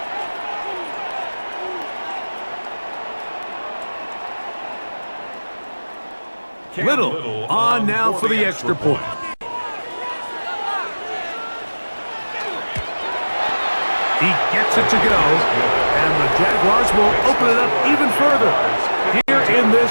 Little on now for the extra point. He gets it to go, and the Jaguars will open it up even further here in this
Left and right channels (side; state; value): both; inverted; correlation -1.00